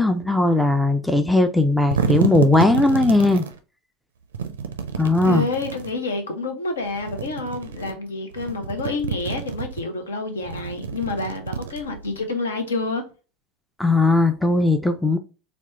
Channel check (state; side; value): normal; both; correlation 0.55